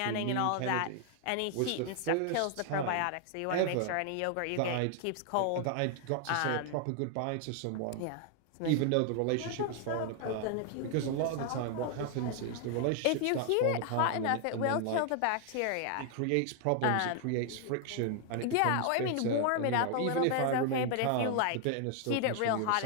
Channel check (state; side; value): different; both; correlation 0.00